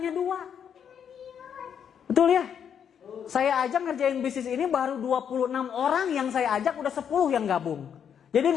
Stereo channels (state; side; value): quieter; right; 8.1 dB